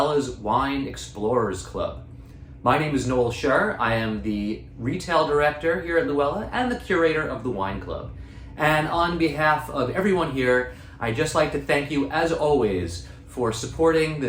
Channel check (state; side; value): identical; both; correlation 1.00